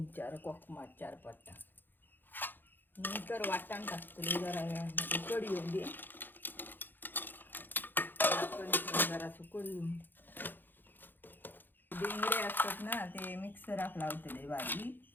4 कोकमा 4-5 टाक. नंतर वाटाण टाकते जरा वेळामध्ये. कढी येऊन दे. जरा कढी येऊन दे. डेंगरे असतात ना, ते मिक्सराक लावतले बारीक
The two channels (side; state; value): right; late; 0.092 ms